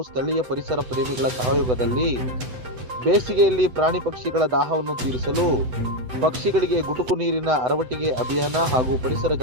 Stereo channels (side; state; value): left; late; 8.0 ms